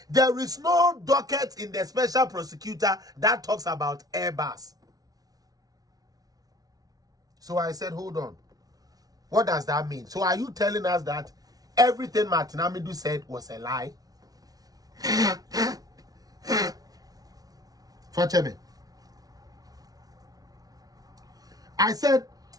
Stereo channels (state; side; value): late; left; 0.18 ms